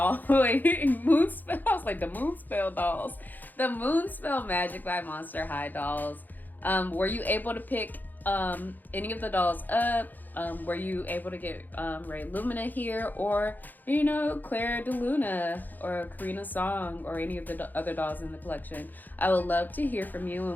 Moonspell, I was like, the Moonspell dolls. The Moonspell Magic by Monster High dolls. Were you able to pick any of the dolls up? Were you able to get Rae Lumina here, or, you know, Clara de Luna or Karina Song or any of the other dolls in the collection? I would love to hear from you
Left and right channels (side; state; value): right; late; 0.085 ms